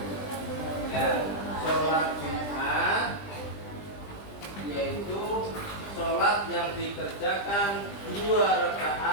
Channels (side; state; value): right; late; 20 ms